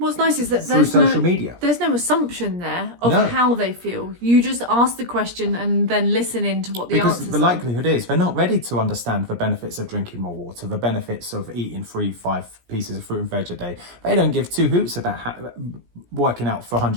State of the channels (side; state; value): left; late; 17 ms